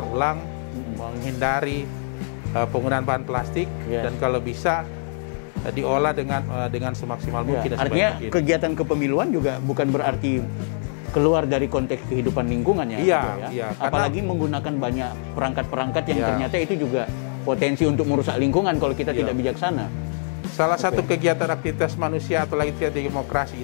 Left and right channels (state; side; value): silent; right; 63 dB below the other